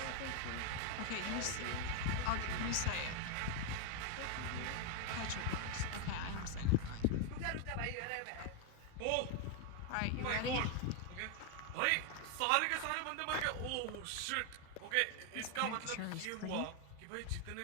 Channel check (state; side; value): different; both; correlation 0.01